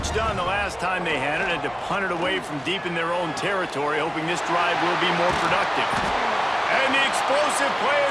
done the last time they had it, had to punt it away from deep in their own territory, hoping this drive will be more productive. And the explosive play,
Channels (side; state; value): both; identical; correlation 1.00